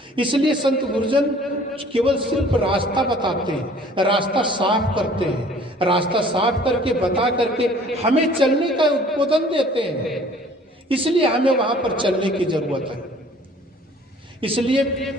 इसलिए संत गुरुजन केवल सिर्फ रास्ता बताते हैं, रास्ता साफ करते हैं, रास्ता साफ करके बता करके हमें चलने का उद्बोधन देते हैं। इसलिए हमें वहां पर चलने की जरूरत है। इसलिए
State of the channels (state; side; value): normal; both; correlation 0.53